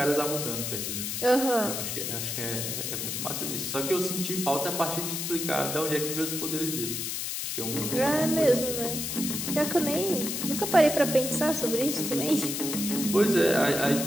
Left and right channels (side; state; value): left; noise; hiss, 3 dB below the sound